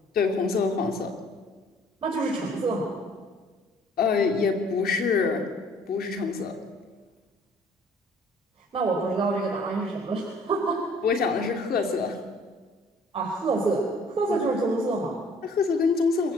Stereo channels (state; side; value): normal; both; correlation 0.56